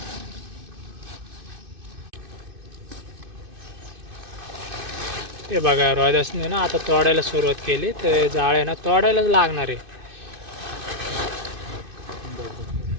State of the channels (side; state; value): left; late; 2.5 ms